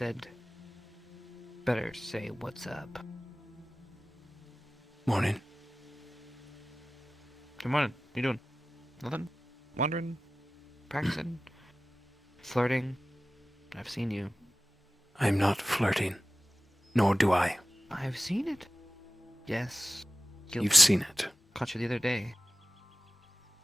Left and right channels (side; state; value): both; normal; correlation 0.93